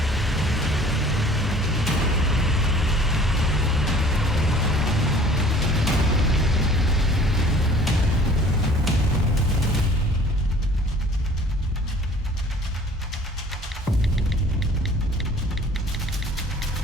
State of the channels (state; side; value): normal; both; correlation 0.50